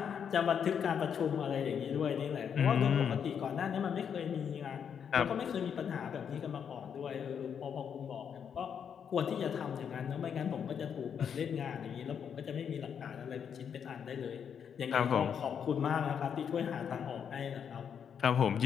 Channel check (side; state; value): right; quieter; 7.7 dB